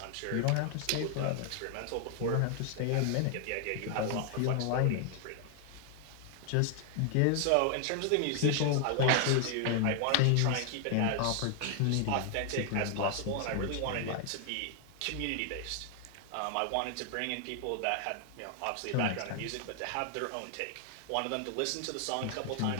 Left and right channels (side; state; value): both; different; correlation 0.00